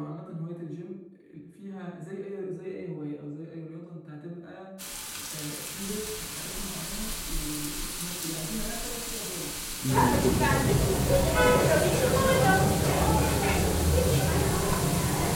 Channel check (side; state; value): both; identical; correlation 1.00